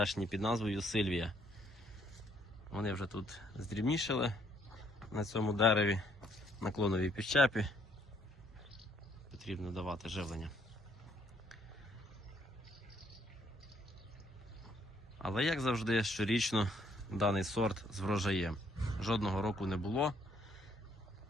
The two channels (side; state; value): both; normal; correlation 0.67